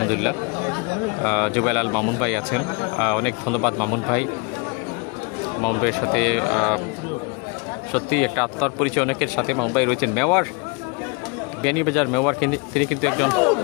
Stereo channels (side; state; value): right; quieter; 31.0 dB